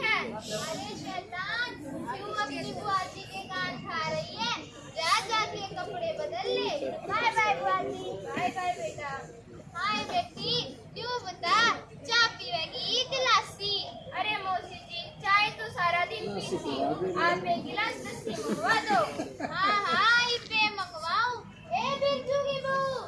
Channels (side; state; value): both; identical; correlation 1.00